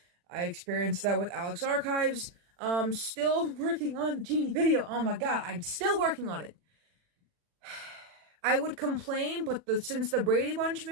I experienced that with Alex Archives. Still working on the Genie video. Oh my god, I'm still working on it. I would complain, but since the Brady Bunch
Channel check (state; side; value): late; left; 40 ms